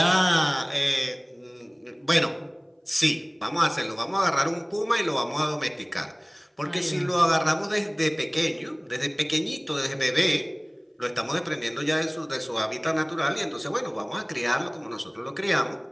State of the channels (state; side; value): identical; both; correlation 1.00